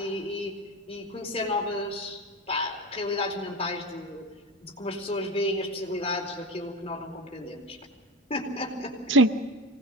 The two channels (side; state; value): both; normal; correlation 0.25